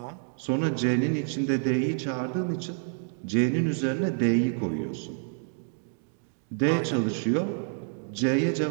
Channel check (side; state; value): left; silent; 59 dB below the other